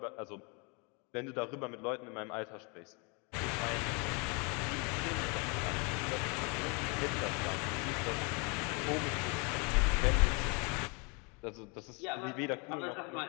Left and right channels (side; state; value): right; quieter; 32.2 dB